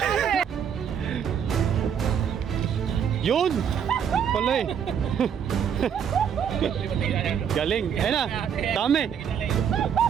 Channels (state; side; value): quieter; left; 8.0 dB